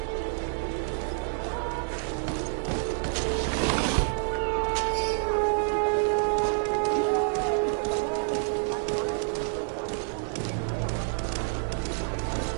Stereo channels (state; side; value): silent; left; digital silence